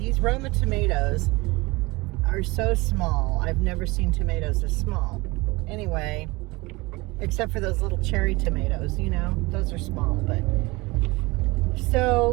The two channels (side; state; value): left; quieter; 23.3 dB